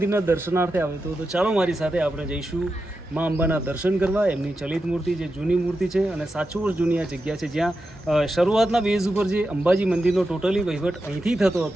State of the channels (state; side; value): normal; both; correlation 0.89